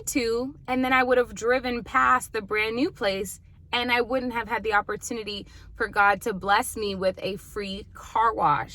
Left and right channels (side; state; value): both; identical; correlation 1.00